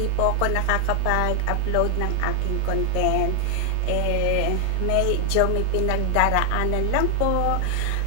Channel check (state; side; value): different; both; correlation 0.00